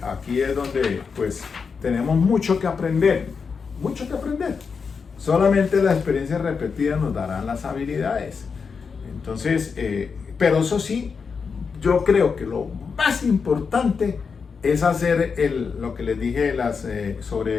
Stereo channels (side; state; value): right; quieter; 5.5 dB